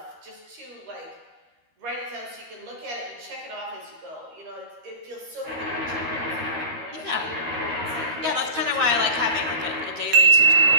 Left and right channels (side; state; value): left; late; 13 ms